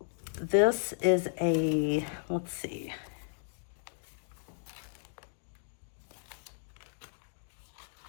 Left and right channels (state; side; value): silent; right; digital silence